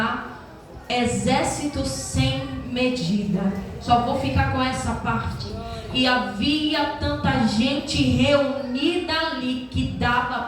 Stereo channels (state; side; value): identical; both; correlation 1.00